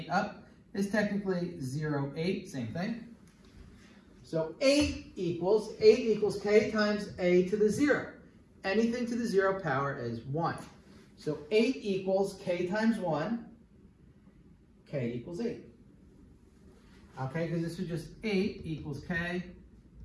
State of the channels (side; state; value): both; identical; correlation 1.00